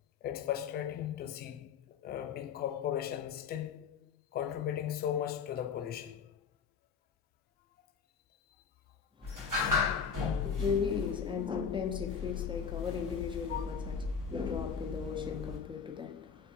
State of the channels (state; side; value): quieter; right; 6.6 dB